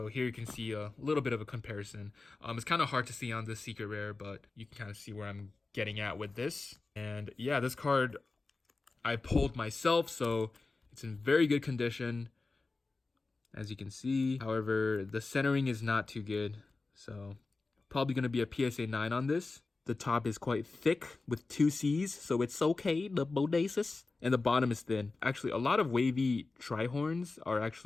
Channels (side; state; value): right; quieter; 3.7 dB